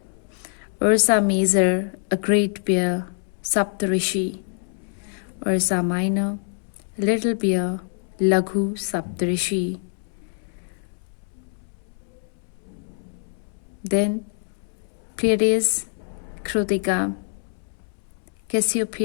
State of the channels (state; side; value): silent; right; 62 dB below the other